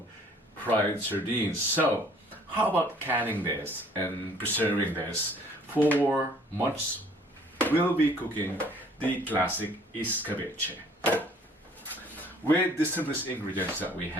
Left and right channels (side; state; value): both; normal; correlation 0.57